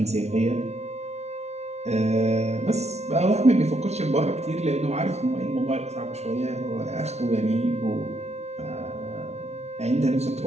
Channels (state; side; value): late; left; 0.31 ms